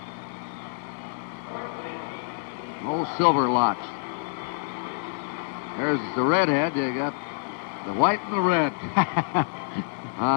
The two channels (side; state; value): right; silent; digital silence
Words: Old silver locks. There's the redhead. You got the white and the red